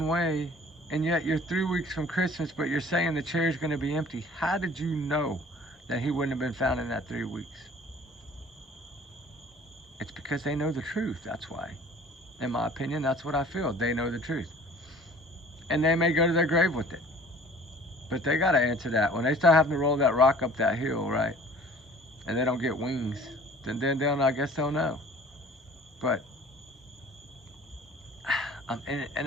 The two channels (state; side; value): normal; both; correlation 0.49